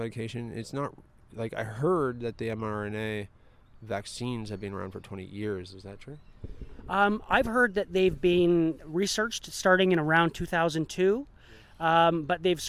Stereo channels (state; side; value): identical; both; correlation 1.00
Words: it's not, like, I heard that the mRNA vaccines have been around for 20 years. Is that true? I've heard that they've been researched starting in around 2002, but they've